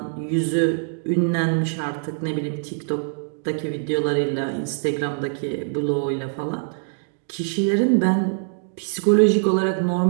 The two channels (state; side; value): silent; left; digital silence